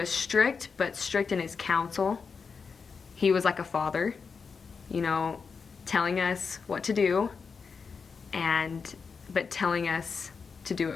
strict, but strict in his counsel. He was like a father, telling us what to do, but telling us to do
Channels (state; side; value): quieter; right; 5.4 dB